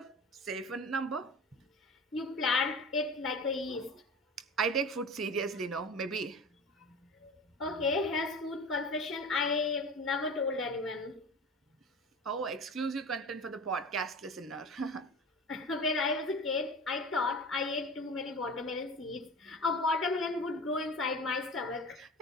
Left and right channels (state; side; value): normal; both; correlation 0.34